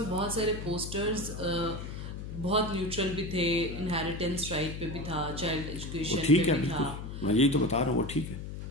बहुत सारे पोस्टर्स बहुत न्यूट्रल भी थे, इनहेरिटेंस राइट पे भी था, चाइल्ड एजुकेशन पे भी था, मैं यही तो बता रहा हूँ, वो ठीक है।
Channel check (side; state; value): left; noise; hum, 8 dB below the sound